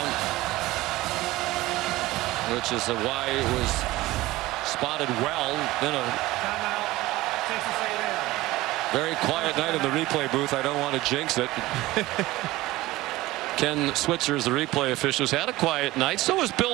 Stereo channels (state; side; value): quieter; left; 18.2 dB